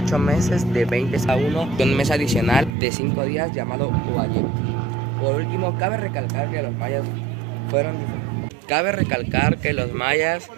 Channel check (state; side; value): drops out; left; at 2.7 s